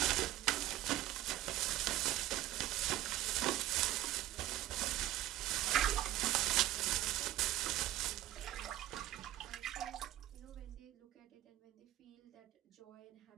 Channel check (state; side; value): quieter; left; 14.2 dB